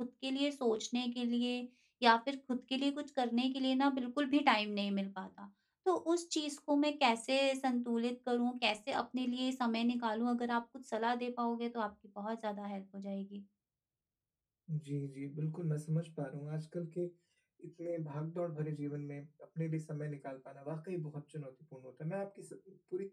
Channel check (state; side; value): identical; both; correlation 1.00